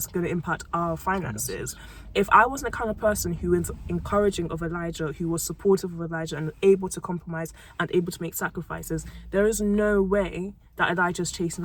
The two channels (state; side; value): identical; both; correlation 1.00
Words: going to impact our finances. If I wasn't the kind of person who is encouraging of Elijah, who was supportive of Elijah and able to compromise and able to make sacrifices, there is no way that Elijah's chasing